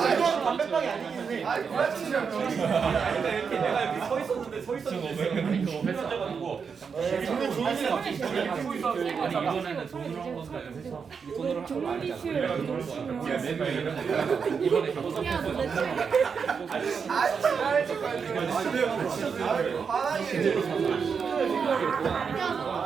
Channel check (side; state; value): left; quieter; 6.0 dB